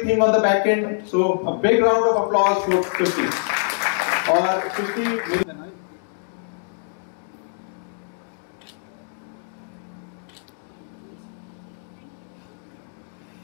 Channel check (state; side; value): silent; right; digital silence